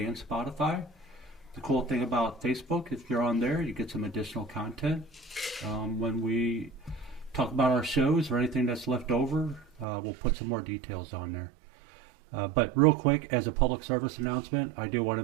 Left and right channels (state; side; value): drops out; left; at 9.9 s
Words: Spotify. The cool thing about Facebook, if you're on there, you get some additional content. When we talk about our shows or anything that's left over, we'll put some more details on there. But real quick, as a public service announcement, I do want